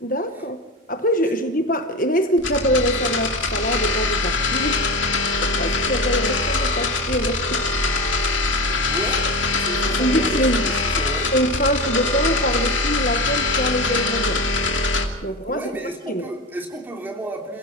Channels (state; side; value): normal; both; correlation 0.24